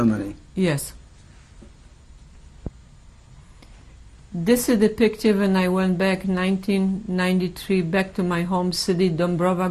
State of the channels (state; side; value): identical; both; correlation 1.00